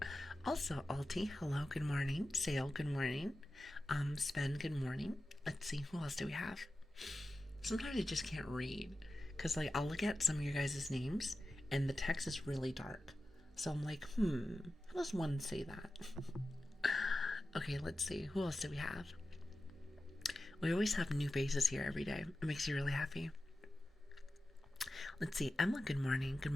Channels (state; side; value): normal; both; correlation 0.93